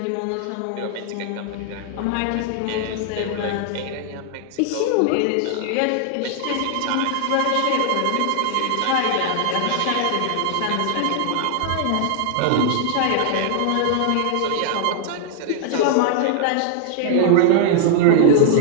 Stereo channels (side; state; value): both; different; correlation 0.00